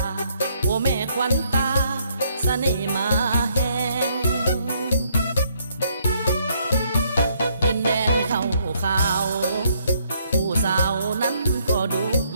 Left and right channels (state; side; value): inverted; both; correlation -0.69